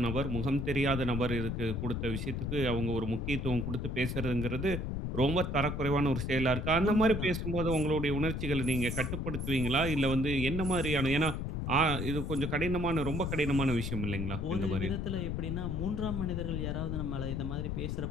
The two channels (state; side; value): noise; left; rumble, 2 dB below the sound